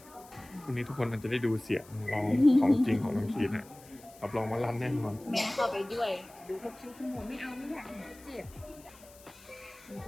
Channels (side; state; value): left; noise; hiss, 23 dB below the sound